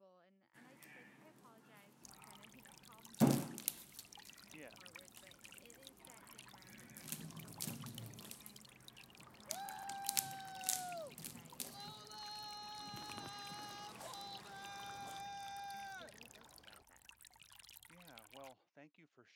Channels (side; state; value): both; identical; correlation 1.00